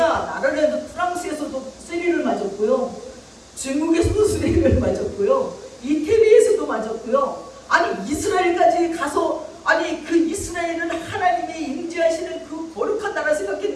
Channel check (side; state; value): both; identical; correlation 1.00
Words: 나라에서 프랑스에서도 쓰리를 맞았고요, 중국에서도 쓰리를 맞았고요, 이태리에서도 맞았고요, 아니 이스라엘까지 가서, 아니 그 이스라엘은 하나님의 임재하시는 그 거룩한 나라